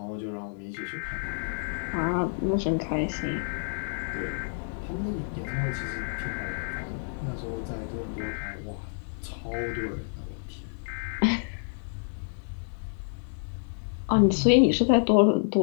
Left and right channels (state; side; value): silent; right; digital silence